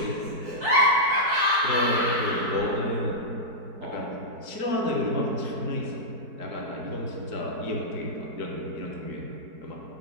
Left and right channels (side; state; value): left; late; 4.6 ms